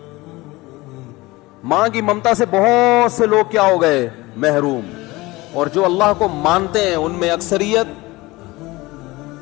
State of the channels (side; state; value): right; quieter; 21.0 dB